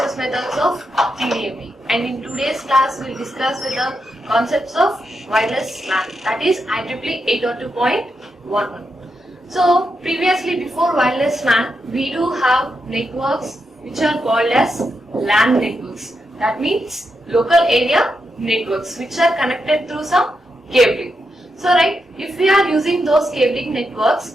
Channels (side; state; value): both; normal; correlation 0.85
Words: methods of TDMA, and in today's class we will discuss with the concepts of wireless LAN, that is IEEE 802.11. So previously, before wireless LAN, we do have networks which are called as LAN networks. That means local area networks which are connected through some cabling. So right, if we are using those cabling